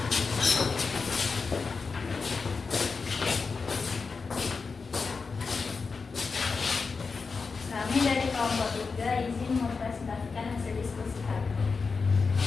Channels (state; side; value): quieter; right; 4.7 dB